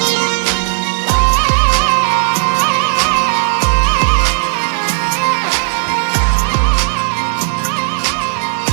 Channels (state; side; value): silent; left; digital silence